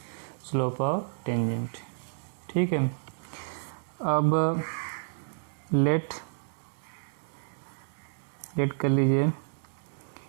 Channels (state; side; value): silent; left; digital silence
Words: slope of tangent. ठीक है, अब लेट कर लीजिए,